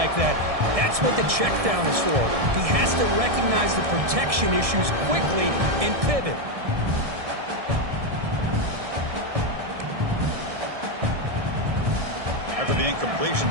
that, that's what the check down is for. He has to recognize the protection issues quickly and pivot. After the incompletion,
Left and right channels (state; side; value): late; left; 1.6 ms